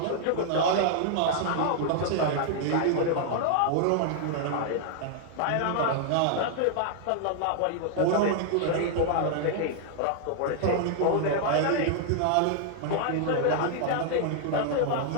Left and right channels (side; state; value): both; different; correlation -0.01